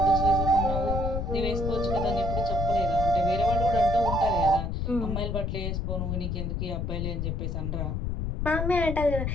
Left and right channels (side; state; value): left; noise; rumble, 2 dB below the sound